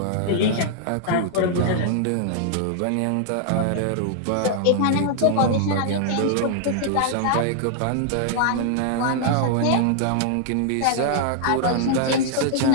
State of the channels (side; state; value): both; different; correlation -0.01